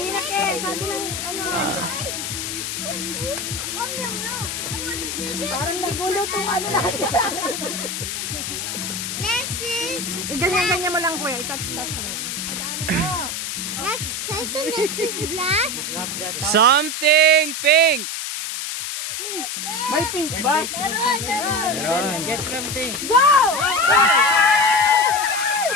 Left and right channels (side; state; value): left; noise; hiss, 4 dB below the sound